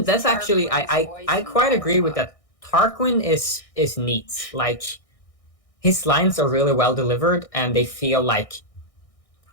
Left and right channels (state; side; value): late; right; 1.6 ms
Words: That's actually I quite agree with that. Tarquin is neat. Like his lines are really well delivered, and they feel like